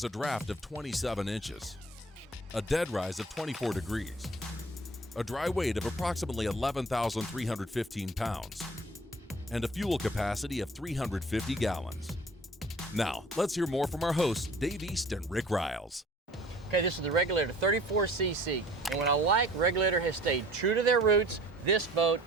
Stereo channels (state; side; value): normal; both; correlation 0.50